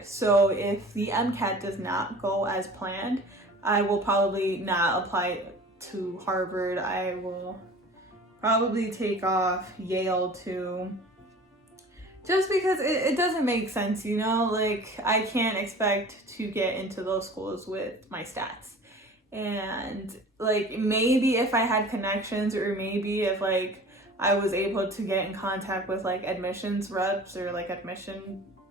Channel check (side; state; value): both; normal; correlation 0.42